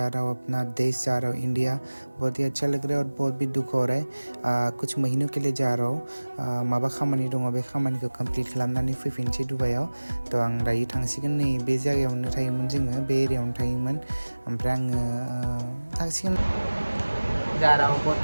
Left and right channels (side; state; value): both; inverted; correlation -1.00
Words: रहा हूँ, अपना देश जा रहा हूँ, इंडिया। बहुत ही अच्छा लग रहा है और बहुत भी दुख हो रहा है। कुछ महीनों के लिए जा रहा हूँ। माबा खामानि दङ, बे खामानिखौ कमप्लिट खालामनानै फैफिनसै दुबाइयाव। तो आं दायो थांसिगोन। नै बे जायगायावनो थायोमोन जोङो, बे एरियायावनो थायोमोन। ओमफ्राय आङो थांसिगोन। जा रहा हूँ, बहुत